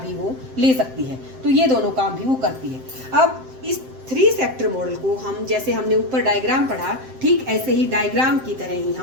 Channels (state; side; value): late; left; 7.7 ms